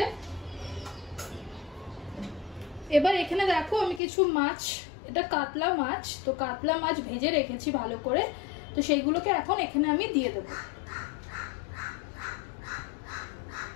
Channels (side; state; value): right; drops out; at 4.0 s